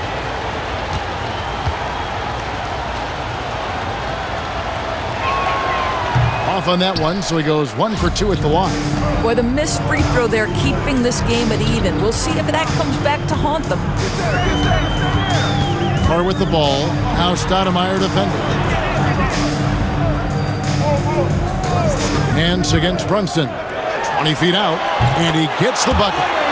Off on that one, so he goes 1 for 2 at the line. Boy, the missed free throw there keeping this game at even. We'll see if that comes back to haunt them. Carr with the ball. Now Stoudemire defending. Hands against Brunson. 20 feet out, and he gets the bucket.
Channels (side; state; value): both; identical; correlation 1.00